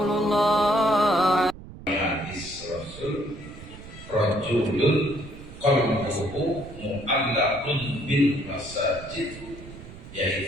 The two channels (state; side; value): noise; right; rumble, 15 dB below the sound